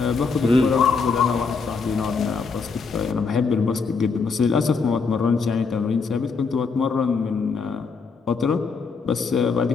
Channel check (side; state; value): right; quieter; 5.0 dB